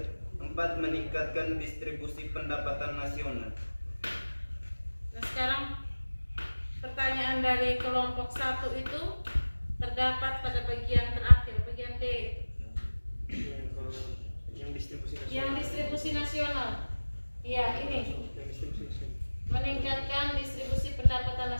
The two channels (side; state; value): both; inverted; correlation -1.00